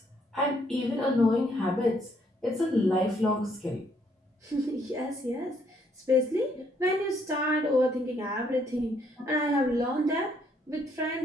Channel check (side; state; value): both; normal; correlation 0.69